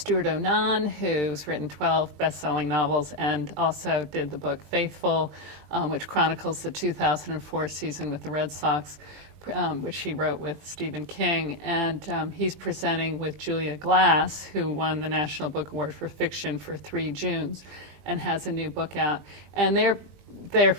Onan, who's written 12 best-selling novels and also did the book Faithful, which chronicles the 2004 season with the Red Sox, which he wrote with Stephen King. And he's presenting with Julia Glass, who won the National Book Award for Fiction for 3 Junes and has a new book out. And they're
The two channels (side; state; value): left; late; 20 ms